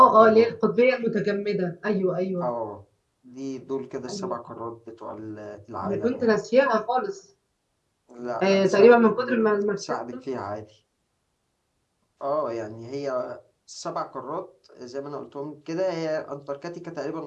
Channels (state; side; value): identical; both; correlation 1.00